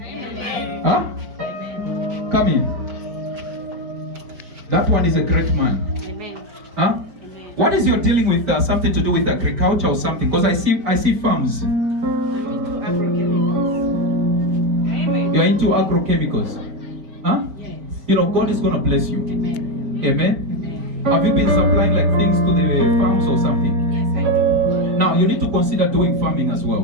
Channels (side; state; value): left; late; 5.1 ms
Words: Huh? Come in. That one is a great man. Amen. Huh? Amen. What is your dealing with something to do with agriculture or something? Because I see farms. I'm into agrochemicals. Amen. You're into agrochemicals. Huh? Yes. God is going to bless you. Amen. Amen. Amen. Have you been supplying like things to the farms or something? Yes, I do. Now you need to consider doing farming as